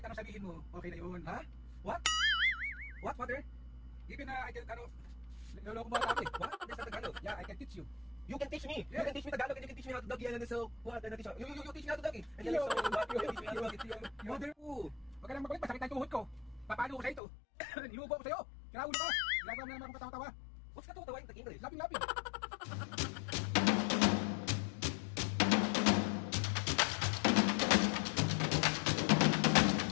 anong sabihin mo, okay na yun. Ha? What? What, father? Even I can, niloloko mo ata ako eh. What? There's a Tagalog. Yeah, I can teach you. You can teach me. Yeah. You can teach me Tagalog and you can teach me how to doggy. And then so, what? And then you teach me how to doggy. And then Yo. so, what? You teach me how to doggy. Mother, Ooh. huwag ka lang makulit, masakit na yung tuhod ko. Papalo ko sa ito. Nilubo ko sa'yo. Kinaulo ka. Ginagawa mo na naman akong katawa-tawa. What's katawa-tawa in English? Lapin-lapin.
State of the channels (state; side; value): drops out; right; at 17.2 s